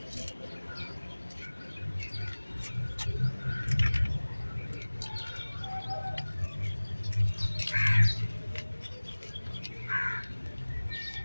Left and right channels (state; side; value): inverted; both; correlation -1.00